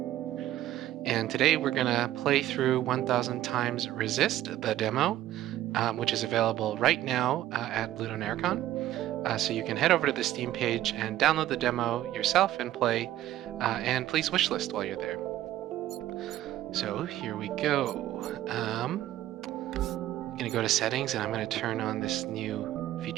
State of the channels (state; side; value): quieter; left; 13.7 dB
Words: And today we're going to play through 1000 times Resist, the demo, which is available right now at LudoNarraCon. So you can head over to the Steam page and download the demo yourself and play, and please wishlist while you're there. So here we go. I'm going to go to settings and I'm going to turn on this new